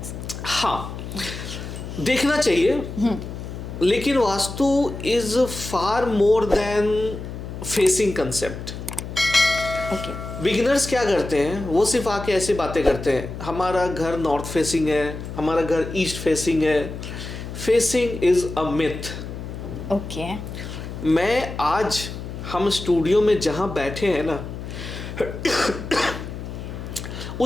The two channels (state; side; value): noise; left; hum, 9 dB below the sound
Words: हाँ, देखना चाहिए, लेकिन vastu is far more than facing concept. Beginners क्या करते हैं, वो सिर्फ आके ऐसी बातें करते हैं, हमारा घर नॉर्थ फेसिंग है, हमारा घर ईस्ट फेसिंग है। Facing is a myth. Okay. मैं आज हम स्टूडियो में जहां बैठे हैं ना,